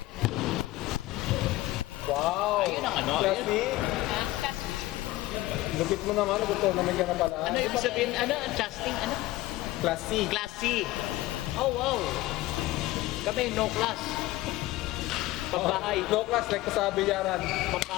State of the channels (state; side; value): quieter; right; 17.5 dB